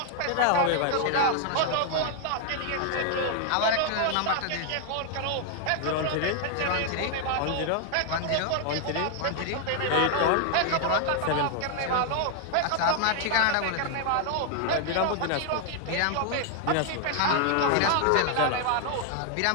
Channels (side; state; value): both; different; correlation 0.00